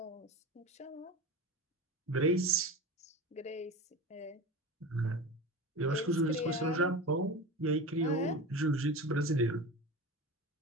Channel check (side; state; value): both; normal; correlation 0.29